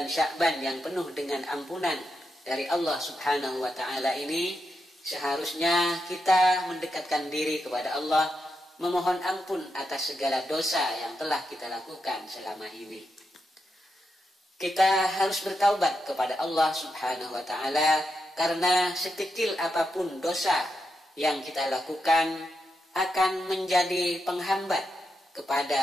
Sya'ban yang penuh dengan ampunan dari Allah Subhanahu wa ta'ala ini, seharusnya kita mendekatkan diri kepada Allah, memohon ampun atas segala dosa yang telah kita lakukan selama ini. Kita harus bertaubat kepada Allah Subhanahu wa ta'ala, karena sekecil apapun dosa yang kita lakukan akan menjadi penghambat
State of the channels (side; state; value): both; normal; correlation 0.85